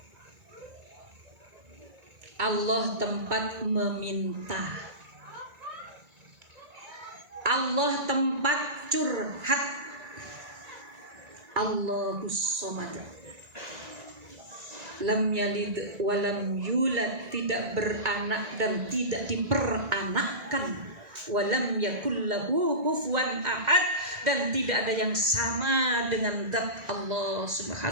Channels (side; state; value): left; late; 1.9 ms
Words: Allah tempat meminta, Allah tempat curhat. Allahus Samad, lam yalid walam yulad, tidak beranak dan tidak diperanakkan, walam yakul lahu kufuwan ahad, dan tidak ada yang sama dengan zat Allah